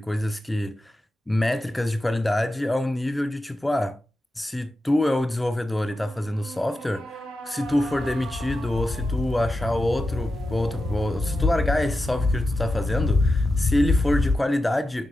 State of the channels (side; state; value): both; normal; correlation 0.91